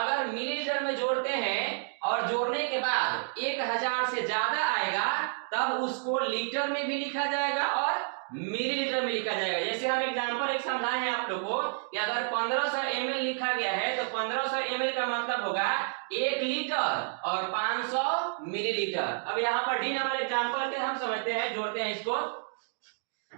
मिलीलीटर में जोड़ते हैं और जोड़ने के बाद 1000 से ज्यादा आएगा तब उसको लीटर में भी लिखा जाएगा और मिलीलीटर में लिखा जाएगा। जैसे हम एग्जांपल एक समझाए हैं आप लोग को कि अगर 1500 ml लिखा गया है तो 1500 ml का मतलब होगा 1 लीटर और 500 मिलीलीटर। अब यहाँ पर डी नंबर एग्जांपल के हम समझते हैं, जोड़ते हैं इसको।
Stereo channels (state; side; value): silent; left; digital silence